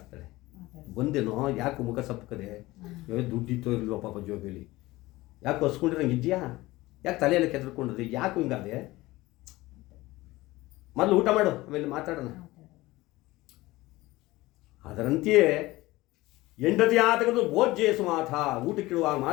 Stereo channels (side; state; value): right; quieter; 19.2 dB